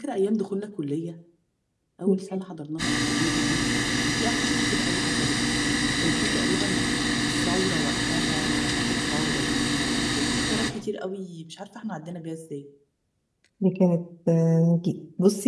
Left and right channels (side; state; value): both; identical; correlation 1.00